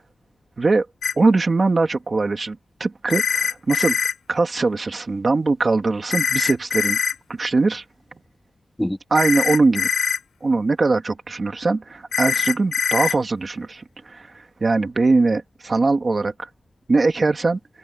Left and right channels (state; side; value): normal; both; correlation 0.92